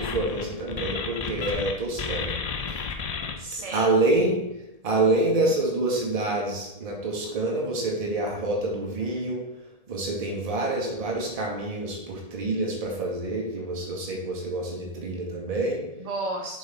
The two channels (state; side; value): late; left; 1.7 ms